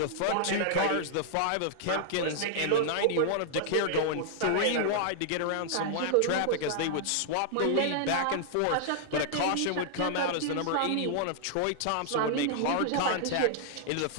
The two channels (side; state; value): both; different; correlation -0.01